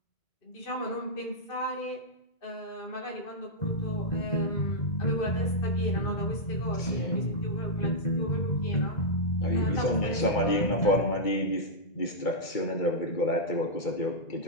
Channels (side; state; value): right; late; 2.3 ms